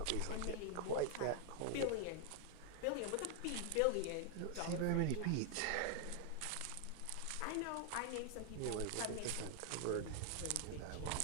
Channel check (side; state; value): both; different; correlation 0.00